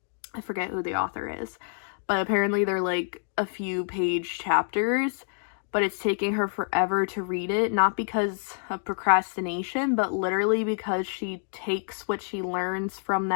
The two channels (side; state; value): right; silent; 60 dB below the other